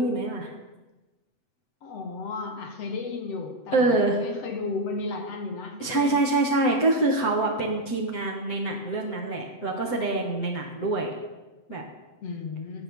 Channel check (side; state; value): right; late; 7.9 ms